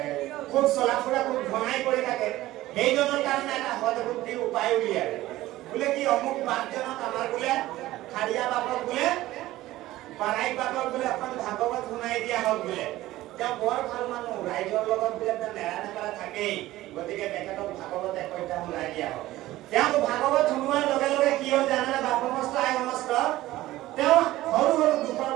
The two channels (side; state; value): left; quieter; 16.3 dB